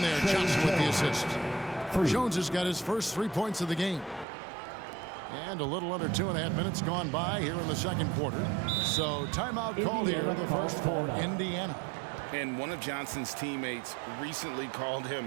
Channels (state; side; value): drops out; left; at 4.2 s